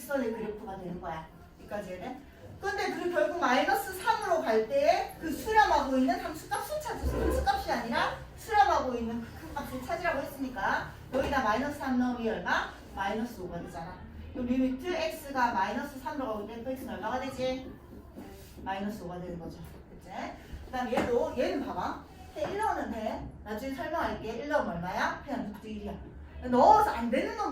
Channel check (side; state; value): both; identical; correlation 1.00